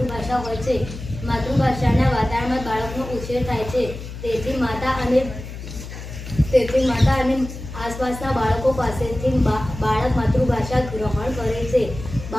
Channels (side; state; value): left; noise; hum, 11 dB below the sound